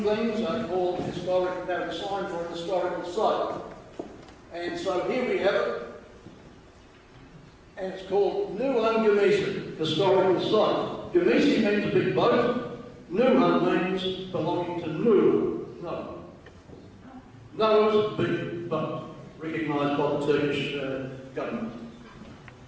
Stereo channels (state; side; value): identical; both; correlation 1.00